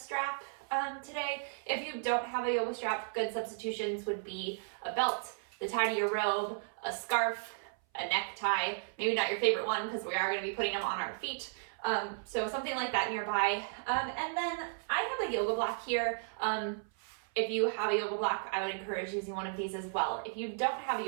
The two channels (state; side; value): silent; left; 55 dB below the other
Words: today. If you don't have a yoga strap, good substitutions would be a belt, the tie to your robe, a scarf, a necktie, maybe not your favorite one because we are going to be putting them on our feet. So something like that nearby. And then I have a yoga block here. If you have a yoga block, I would encourage using one of these as well. If you don't have a